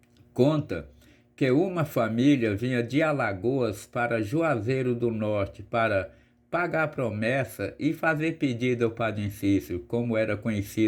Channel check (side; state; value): both; identical; correlation 1.00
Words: conta que uma família vinha de Alagoas para Juazeiro do Norte para pagar promessa e fazer pedido ao Padre Cícero, como era